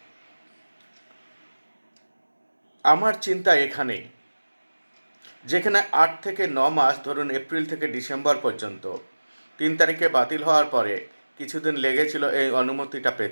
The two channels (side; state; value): both; inverted; correlation -1.00